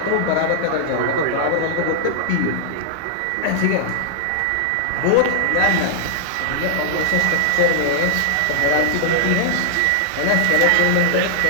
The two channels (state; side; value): different; both; correlation -0.01